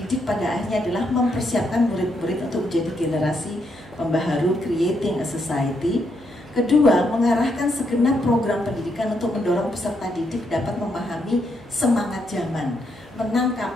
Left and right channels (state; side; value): noise; left; hum, 28 dB below the sound